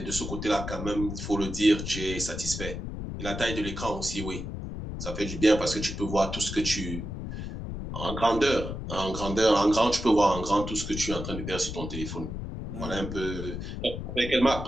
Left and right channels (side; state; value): left; noise; rumble, 6 dB below the sound